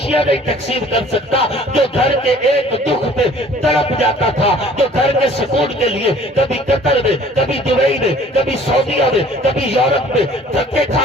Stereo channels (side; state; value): both; normal; correlation 0.52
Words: نہیں تقسیم کر سکتا، جو گھر کے ایک دکھ پہ تڑپ جاتا تھا، جو گھر کے سکون کے لیے کبھی قطر میں، کبھی دبئی میں، کبھی سعودیہ میں، کبھی یورپ میں دھکے